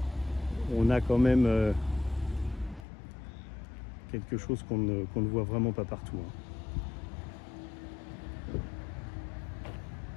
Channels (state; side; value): drops out; right; at 2.9 s